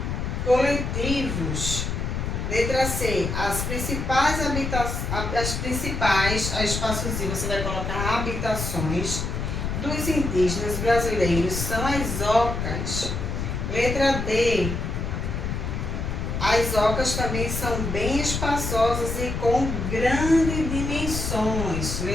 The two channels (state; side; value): noise; left; rumble, 3 dB below the sound